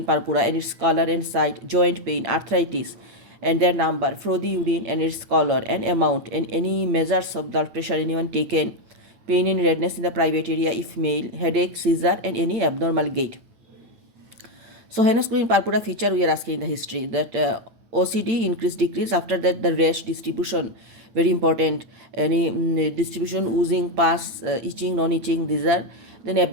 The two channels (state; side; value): late; left; 8.7 ms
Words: purpura and its color and site, joint pain, arthritis and their number, frothy urine and its color and amount, and any measures of blood pressure anyone taken, pain and redness in the private area if male, headache, seizure and any abnormal gait. So Henoch schonlein purpura feature we are asking in the history, that OCD increase decrease, after that the rash distribution, very important, any distribution, oozing, pus, itching, non-itching, these are. Then